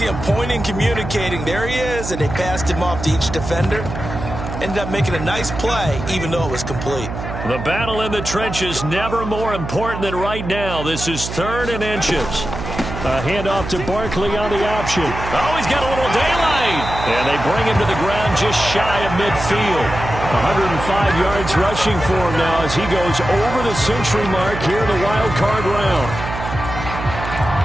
him pointing, communicating. There he is, and they passed him off to each defender. Ended up making a nice play, even though it was complete. The battle in the trenches never more important than right now. This is 3rd and inches. A handoff to Barkley on the option. Oh, he's got a little daylight. And they bring him to the ground just shy of midfield. 105 yards rushing for him now as he goes over the century mark here in the wild card round.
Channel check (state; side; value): noise; right; hum, 7 dB below the sound